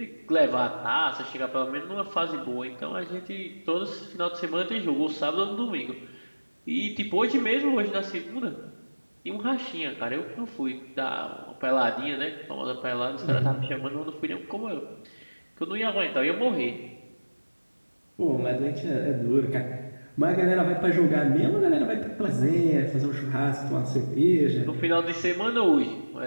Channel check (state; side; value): inverted; both; correlation -1.00